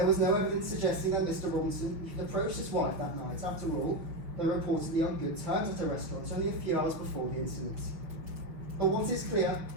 was no evidence suggesting that Mr. Robinson even approached his wife that night. After all, they were reportedly on good terms at a restaurant only a few hours before the incident. But what is clear,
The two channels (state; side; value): late; left; 6.0 ms